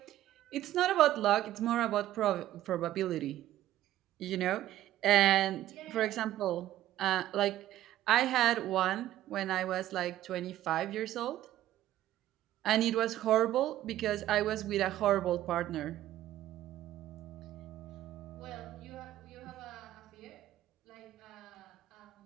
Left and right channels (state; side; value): quieter; left; 13.6 dB